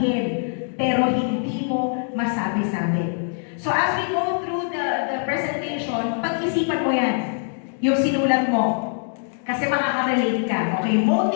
pero hindi mo masabi-sabi. So as we go through the presentation, pag-isipan mo yan, yung sinulat mo. Kasi makaka-relate ka. Okay,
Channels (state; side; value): silent; right; 62 dB below the other